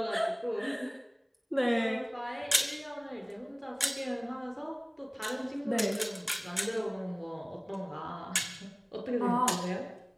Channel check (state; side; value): identical; both; correlation 1.00